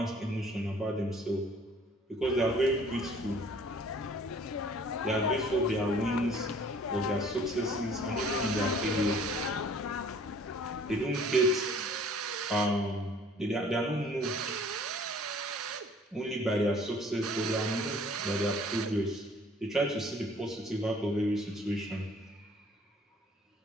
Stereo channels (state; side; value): normal; both; correlation 0.54